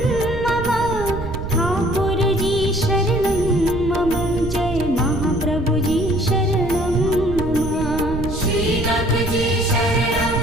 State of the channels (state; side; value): noise; right; rumble, 7 dB below the sound